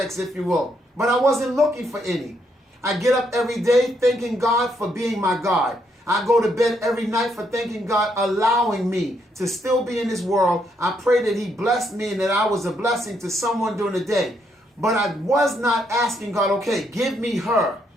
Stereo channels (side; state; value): both; normal; correlation 0.75